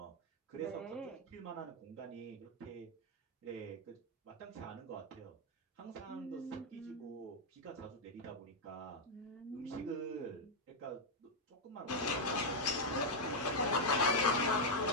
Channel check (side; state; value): both; normal; correlation 0.00